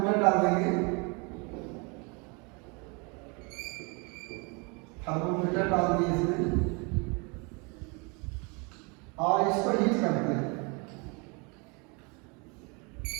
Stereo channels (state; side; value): quieter; left; 31.1 dB